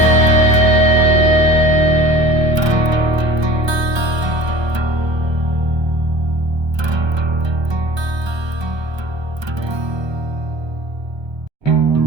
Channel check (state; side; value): late; left; 1.3 ms